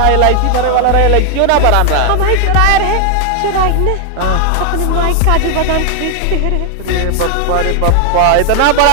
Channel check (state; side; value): different; both; correlation 0.00